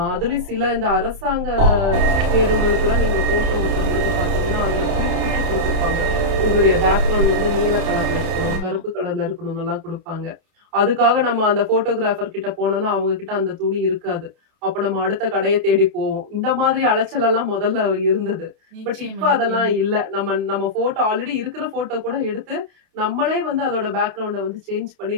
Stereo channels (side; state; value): left; late; 31 ms